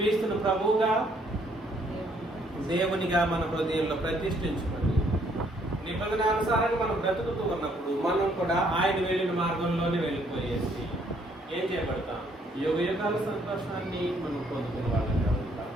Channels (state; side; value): normal; both; correlation 0.67